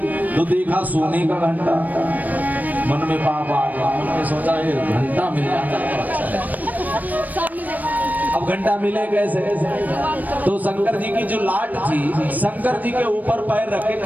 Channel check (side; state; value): left; late; 0.081 ms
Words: तो देखा सोने का घंटा। मन में पाप आ गया, मन में सोचा ये घंटा मिल जाता तो अच्छा है। अब घंटा मिले कैसे? तो शंकर जी की जो लाट थी, शंकर जी के ऊपर पैर रख के